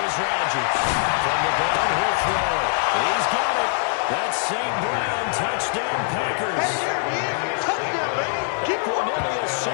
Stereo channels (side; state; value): right; silent; 63 dB below the other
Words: is Rodgers. From the ground, he'll throw. He's got it. That's St. Brown. Touchdown, Packers. Hey, there he is. Touchdown, baby. Keep Cornelius